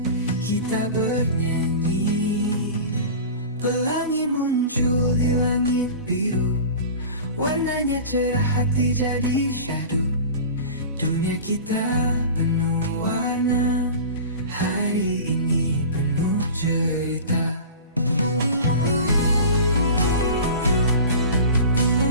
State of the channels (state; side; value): inverted; both; correlation -0.36